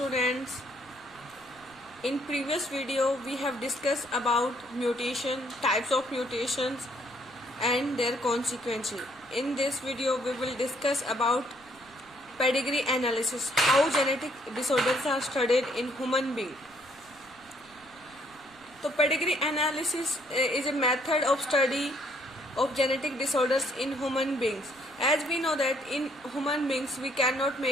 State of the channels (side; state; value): right; noise; rumble, 29 dB below the sound